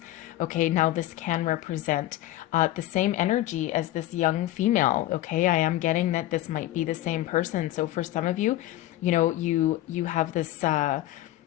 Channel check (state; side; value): quieter; right; 15.0 dB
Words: okay, now this can represent the same energy as this young female, okay? I am getting that this might be the same person. So for some of you, you have this,